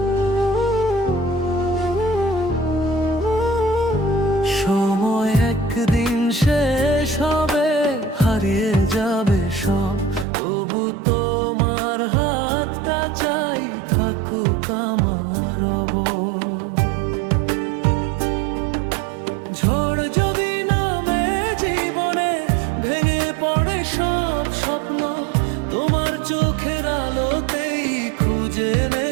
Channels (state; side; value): drops out; left; at 10.2 s